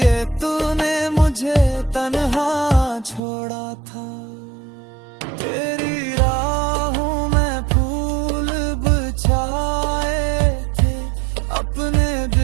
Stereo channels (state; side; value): drops out; left; at 3.2 s